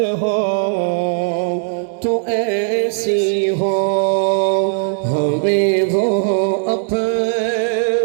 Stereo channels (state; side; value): silent; left; 67 dB below the other